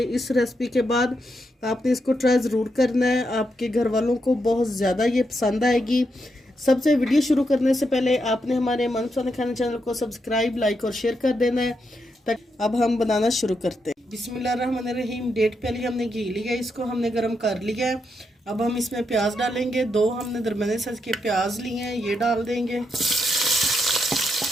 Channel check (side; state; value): both; normal; correlation 0.82